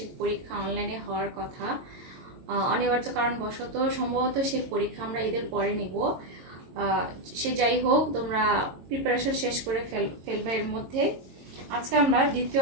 পরীক্ষা অনলাইনে হওয়ার কথা। অনিবার্য কারণবশত সম্ভবত সেই পরীক্ষা আমরা ঈদের পরে নিব। সে যাই হোক, তোমরা প্রিপারেশন শেষ করে ফেলবে এর মধ্যে। আজকে আমরা দ্বিতীয়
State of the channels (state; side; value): late; left; 22 ms